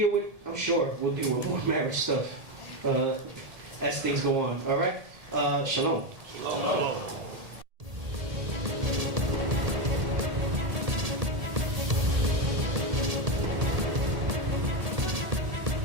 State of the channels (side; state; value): left; late; 1.8 ms